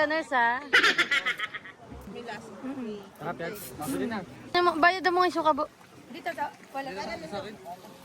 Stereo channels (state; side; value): identical; both; correlation 1.00